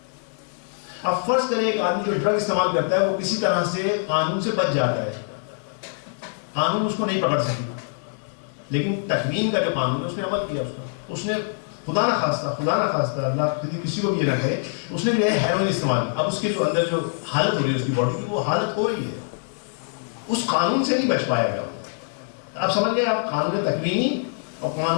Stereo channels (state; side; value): silent; right; 58 dB below the other